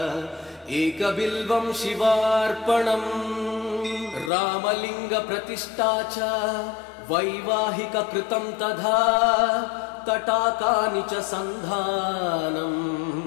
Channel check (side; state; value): right; drops out; at 4.3 s